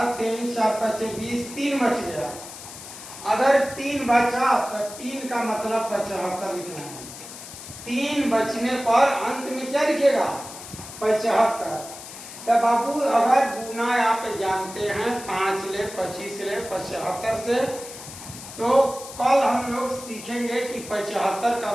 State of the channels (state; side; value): noise; left; hiss, 13 dB below the sound